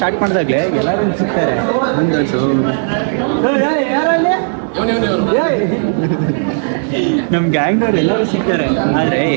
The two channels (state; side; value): silent; left; 70 dB below the other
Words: ಮಾಡಿದಾಗಲೇ ಎಲ್ಲರೂ ಸಿಗ್ತಾರೆ ನಮ್ಮ ಗ್ಯಾಂಗ್ನವ್ರು ಎಲ್ಲರೂ ಸಿಗ್ತಾರೆ, ಆದರೆ